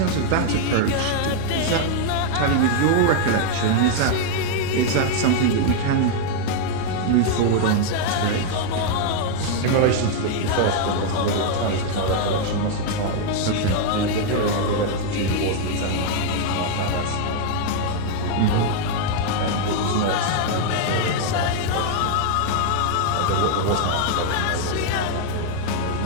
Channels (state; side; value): different; both; correlation 0.00